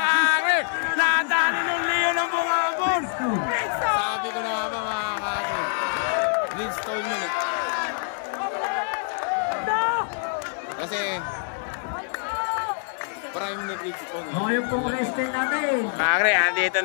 kakri! Nadaanin ng Leo ng bungabon! Sabi ko na nga ba, mga kakri? Bridgestone yun eh. Kasi, prime ni Bridgestone. Yung pong wrestling natin. Kakri, andito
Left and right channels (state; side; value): silent; right; 62 dB below the other